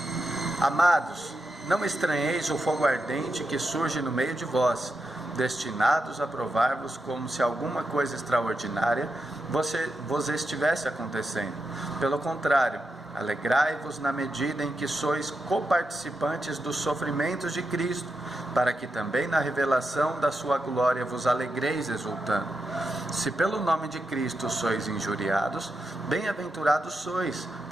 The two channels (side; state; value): both; normal; correlation 0.86